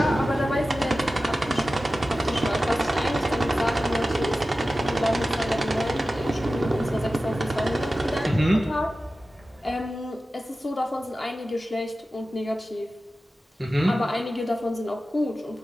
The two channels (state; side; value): normal; both; correlation 0.94